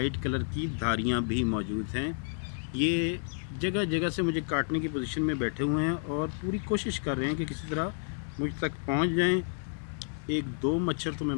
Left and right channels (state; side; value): silent; right; digital silence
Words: कलर की धारियाँ भी मौजूद हैं। ये जगह जगह से मुझे काटने की पोजीशन में बैठे हुए हैं और पूरी कोशिश कर रहे हैं कि किसी तरह मुझ तक पहुंच जाएं। एक दो मच्छर तो मैं